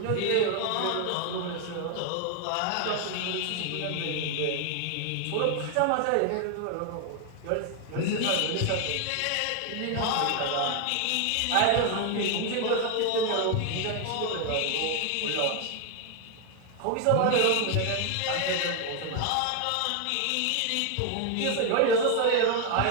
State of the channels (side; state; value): both; different; correlation 0.00